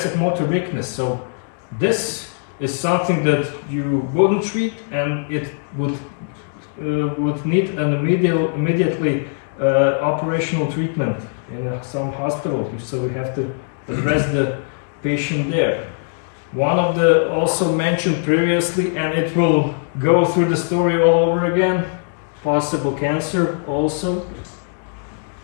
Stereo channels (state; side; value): silent; right; digital silence